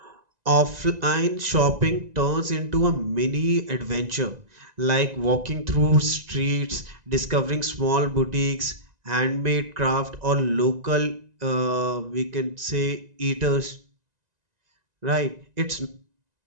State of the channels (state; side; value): late; left; 1.9 ms